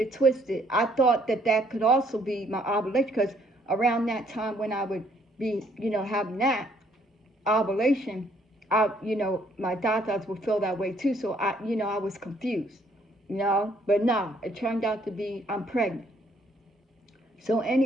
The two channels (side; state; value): both; normal; correlation 0.66